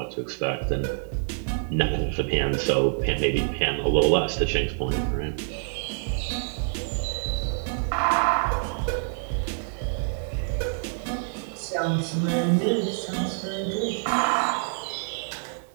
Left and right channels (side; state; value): left; silent; digital silence